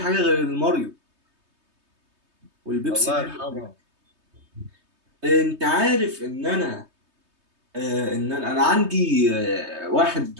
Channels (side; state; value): left; late; 3.2 ms